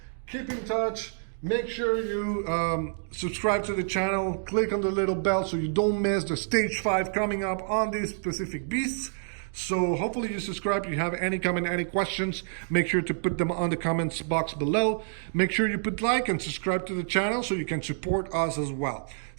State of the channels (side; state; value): left; silent; digital silence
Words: Keep in touch. Make sure you subscribe to the channel. Click on the little bell so you don't miss the Stage 5 coming up on these specific beasts. So hopefully you subscribe. If you have any comment, any questions, make sure to put them on the comments box below. Make sure you put like and subscribe to the channel so you can support us as well.